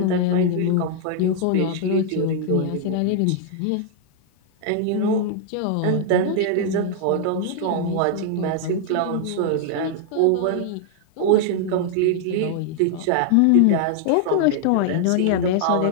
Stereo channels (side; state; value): both; different; correlation -0.01